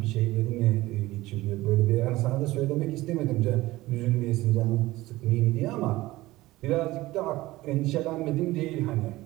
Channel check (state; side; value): quieter; left; 18.2 dB